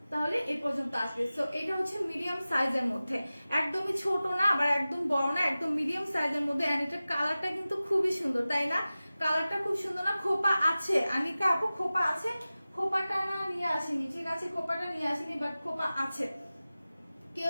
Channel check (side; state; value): both; inverted; correlation -0.96